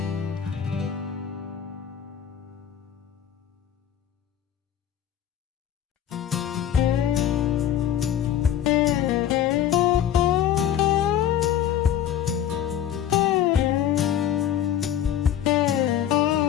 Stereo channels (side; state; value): right; quieter; 10.3 dB